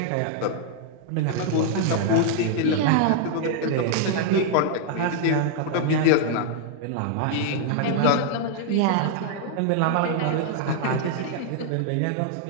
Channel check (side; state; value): both; different; correlation 0.00